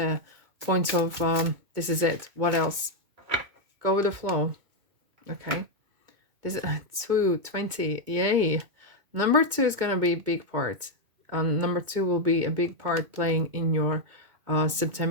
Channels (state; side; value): late; left; 2.2 ms